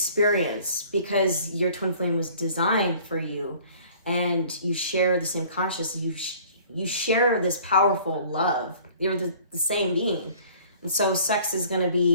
because your twin flame was designed for you, and you share the same consciousness. You share this powerful love. You're the same being. And so sex is going to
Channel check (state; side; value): inverted; both; correlation -0.52